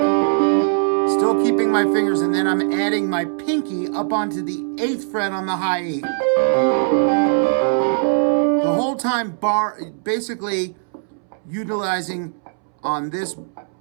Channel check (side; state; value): left; silent; 66 dB below the other